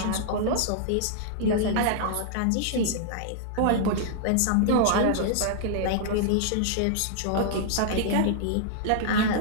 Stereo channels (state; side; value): different; both; correlation -0.01